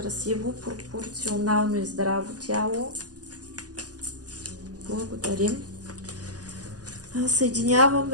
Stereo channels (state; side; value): late; left; 0.68 ms